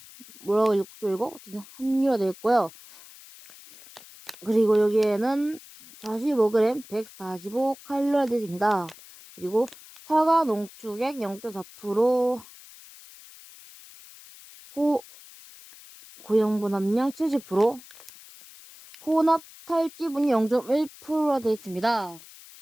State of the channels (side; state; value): left; noise; hiss, 20 dB below the sound